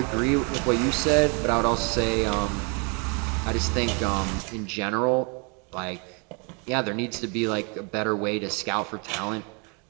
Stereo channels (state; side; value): quieter; left; 33.9 dB